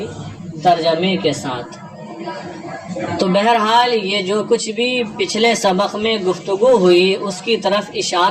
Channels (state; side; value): identical; both; correlation 1.00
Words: ترجمے کے ساتھ۔ تو بہرحال یہ جو کچھ بھی پچھلے سبق میں گفتگو ہوئی اس کی طرف